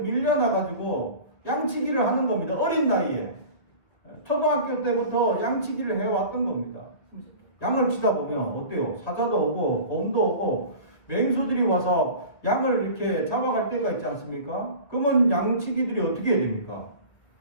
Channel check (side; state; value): right; late; 1.8 ms